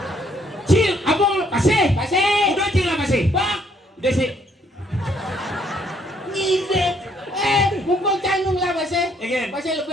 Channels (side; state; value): both; normal; correlation 0.67